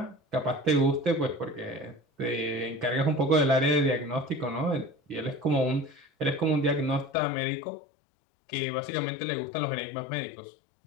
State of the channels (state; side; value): drops out; right; at 7.1 s